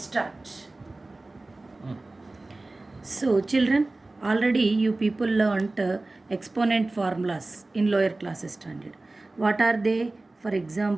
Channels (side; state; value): left; quieter; 3.0 dB